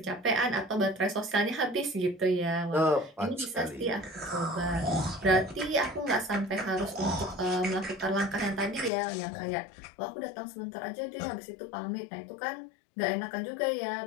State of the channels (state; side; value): drops out; right; at 8.9 s